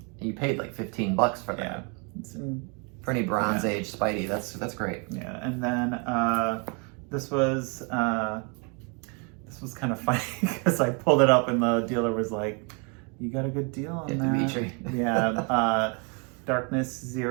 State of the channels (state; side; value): quieter; left; 34.8 dB